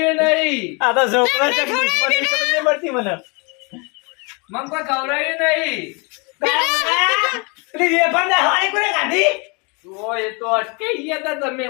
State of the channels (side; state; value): right; quieter; 31.7 dB